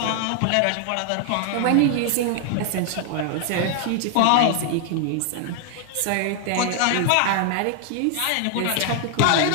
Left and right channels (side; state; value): both; different; correlation 0.00